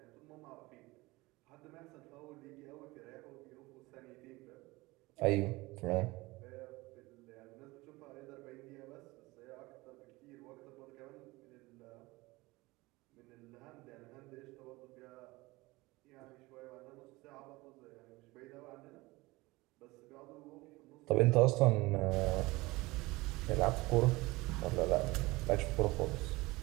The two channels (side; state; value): left; quieter; 21.6 dB